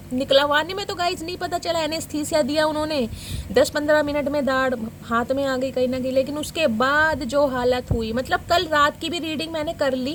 निकलवाने में तो गाइस नहीं पता चला, एनेस्थीसिया दिया उन्होंने, 10-15 मिनट में दाढ़ हाथ में आ गई कहीं ना कहीं। लेकिन उसके बाद जो हालत हुई, मतलब कल रात की भी रीडिंग मैंने कर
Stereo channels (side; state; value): both; identical; correlation 1.00